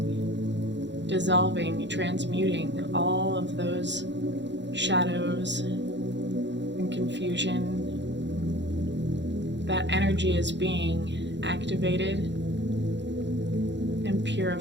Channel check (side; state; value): left; late; 0.52 ms